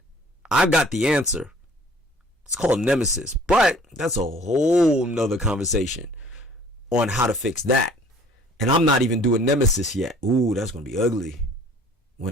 I've got the answer. It's called Nemesis, but that's a whole nother conversation on how to fix that. And I'm not even doing Nemesis yet. Ooh, that's going to be ugly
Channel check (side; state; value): both; normal; correlation 0.53